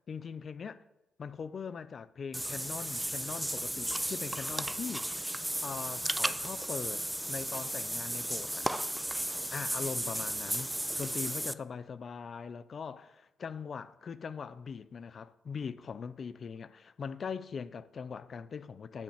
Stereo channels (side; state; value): both; normal; correlation 0.94